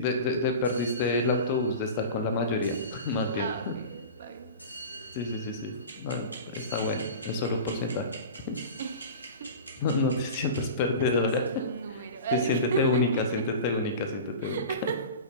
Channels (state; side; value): inverted; both; correlation -0.32